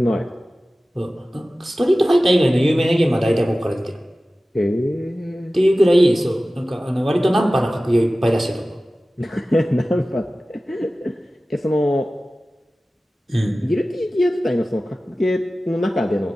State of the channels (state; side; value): normal; both; correlation 0.96